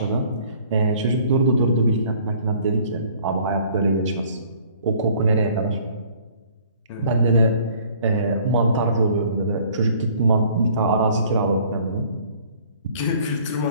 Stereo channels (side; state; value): both; inverted; correlation -0.55